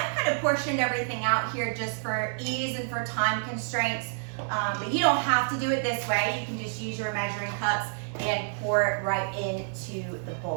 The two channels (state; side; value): silent; left; digital silence